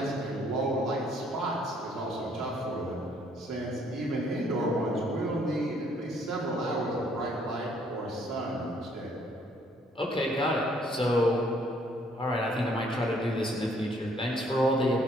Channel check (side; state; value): both; normal; correlation 0.64